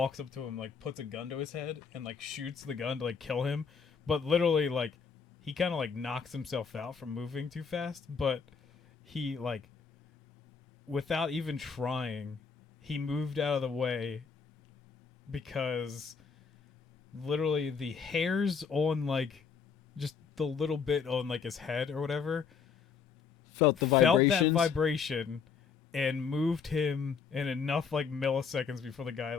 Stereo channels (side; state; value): right; quieter; 6.0 dB